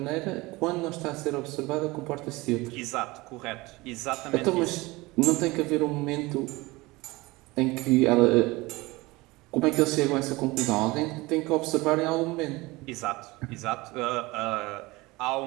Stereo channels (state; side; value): quieter; left; 21.9 dB